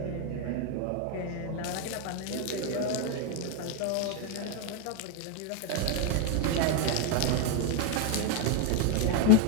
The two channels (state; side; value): different; both; correlation 0.01